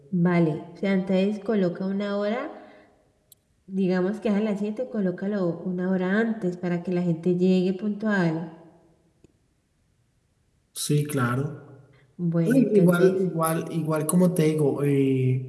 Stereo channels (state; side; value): identical; both; correlation 1.00